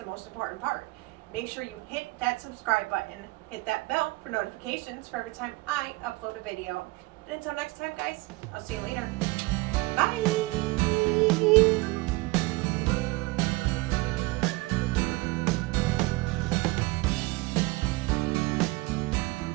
most important part. Make sure you hit that subscribe button, hit that bell for notifications for every time I upload a video. And until next time, guys, I'll see you later.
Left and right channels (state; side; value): quieter; left; 22.3 dB